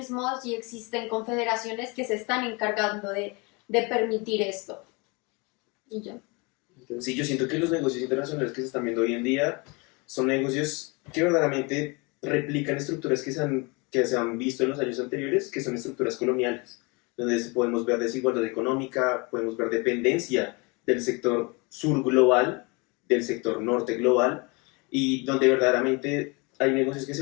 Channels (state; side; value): quieter; right; 28.7 dB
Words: y existen confederaciones que se están encargando de permitir esto. Y ya. Sí, yo siento que los negocios internacionales que se están viendo hoy en día son negocios que verdaderamente replican estructuras que se han visto en los años anteriores, que son estructuras coloniales, donde podemos ver desigualdad económica, podemos ver dependencia del sector sur global, del sector norte global, y donde verdaderamente hay negocios que